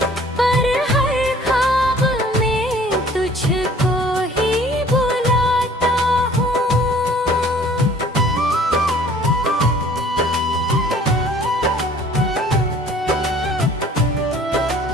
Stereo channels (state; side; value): normal; both; correlation 0.53